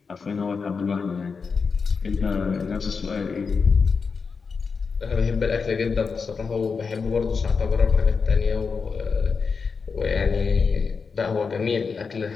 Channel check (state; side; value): quieter; right; 5.2 dB